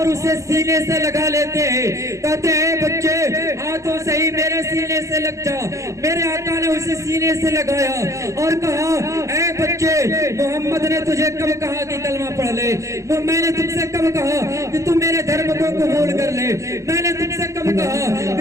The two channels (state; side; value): late; left; 0.15 ms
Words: اسے سینے سے لگا لیتے ہیں. کہتے ہیں بچے ہاتھوں سے ہی میرے سینے سے لگ جا. میرے آقا نے اسے سینے سے لگایا اور کہا اے بچے محمد نے تجھے کب کہا کہ کلمہ پڑھ لے؟ میں نے تم سے کب کہا کہ تم میرے دھرم کو قبول کر لے؟ میں نے تم سے کب کہا